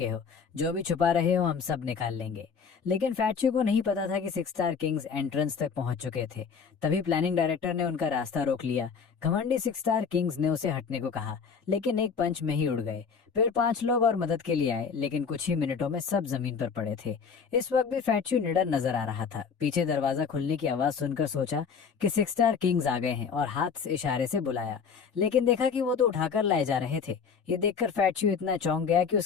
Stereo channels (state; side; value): quieter; right; 6.1 dB